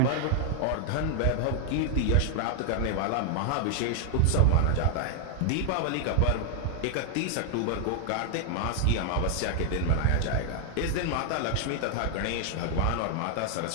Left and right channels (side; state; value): both; different; correlation 0.00